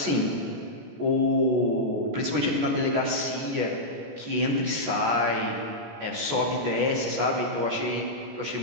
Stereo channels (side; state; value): left; late; 17 ms